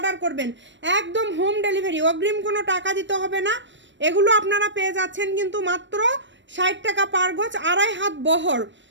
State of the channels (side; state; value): left; late; 0.53 ms